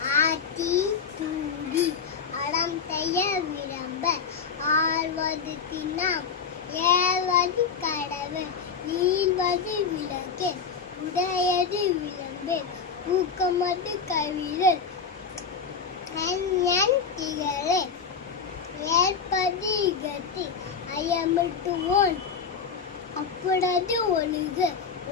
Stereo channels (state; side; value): quieter; right; 6.0 dB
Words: ஆத்தி தூடி அடம் செய்ய விளம்ப ஆழ்வது தினம் ஏழ்வது கடவு ஈழ்வது விளக்கு உடையது விளம்பு ஊக்கமது கவிழல் திகழே ஏற்பது இகத்தி ஐயமிட்டுவோன் அப்பொழுது ஒழுக